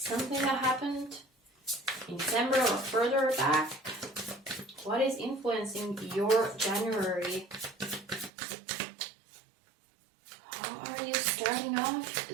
that happened in December or further back? What is influencing your January? How are you starting off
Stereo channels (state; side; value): drops out; left; at 8.3 s